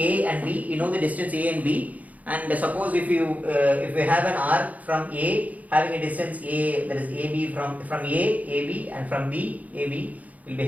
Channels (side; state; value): left; late; 0.074 ms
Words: and B, you know the distance A and B. And suppose if we have an arc from A having a distance A, that is AB, from A, AB, and from B, AB, will be